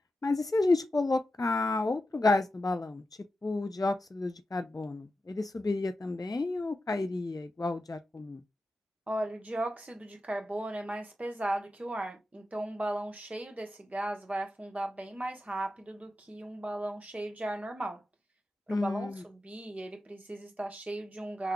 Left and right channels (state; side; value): normal; both; correlation 0.91